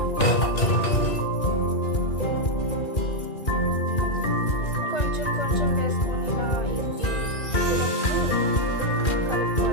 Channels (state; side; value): late; right; 2.4 ms